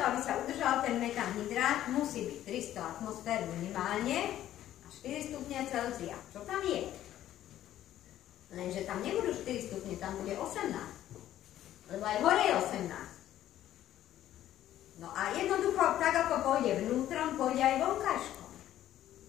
aby sa udržal ten metanhydrát, musí byť 300 atmosfér minimálne a 4 stupne Celzia. Čo tam je? Lenže tam nebudú 4 stupne, tam bude 18. Lebo aj hore je 18. No a jednoducho, tak ako pôjde vnútrom, pôjde aj vonkajškom.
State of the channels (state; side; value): quieter; right; 12.5 dB